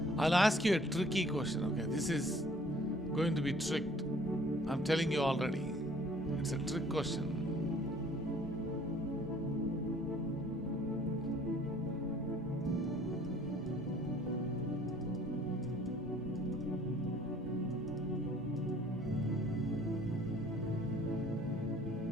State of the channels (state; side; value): normal; both; correlation 0.56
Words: I'll ask you a tricky question, okay? This is going to be tricked. I'm telling you already. It's a trick question.